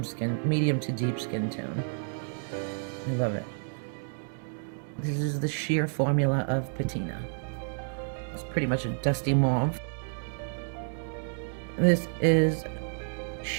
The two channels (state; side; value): silent; left; digital silence